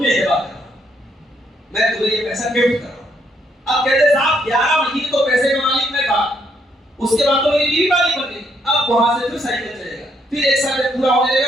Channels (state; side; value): normal; both; correlation 0.73